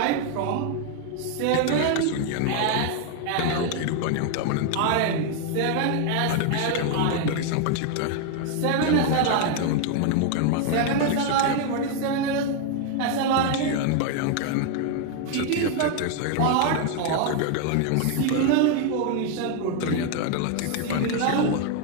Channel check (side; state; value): both; different; correlation 0.01